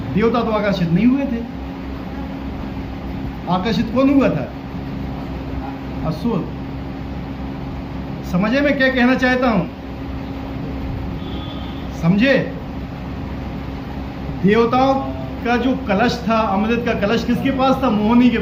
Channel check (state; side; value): identical; both; correlation 1.00